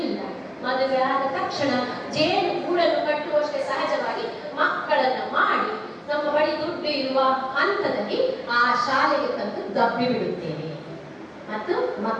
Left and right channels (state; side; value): identical; both; correlation 1.00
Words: ಇಲ್ಲ. ಮದುವೆ ಆದ ತಕ್ಷಣ ಜೇನು ಗೂಡನ್ನು ಕಟ್ಟುವಷ್ಟೇ ಸಹಜವಾಗಿ ಮಕ್ಕಳನ್ನ ಮಾಡಿ ನಮ್ಮ ಬಳಿ ದುಡ್ಡು ಇರುವ ಹಂತದಲ್ಲಿ ಆ ಶಾಲೆಗೆ ತಂದು ದಬ್ಬಿ ಬಿಡುತ್ತೇವೆ ಮತ್ತು